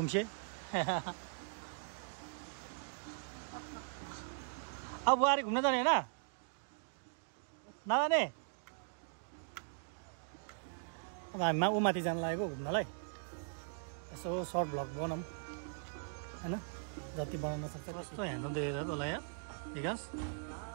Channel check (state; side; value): silent; left; digital silence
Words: अब बुहारी घुम्न जाने हैन नजाने हामी ऊ माथि जान लागेको घुम्नलाई यसो सर्ट भ्लग बनाऊँ हैन जति बनाउन सक्छ कस्तो ह्यान्डल देखेर तँलाई यार विकास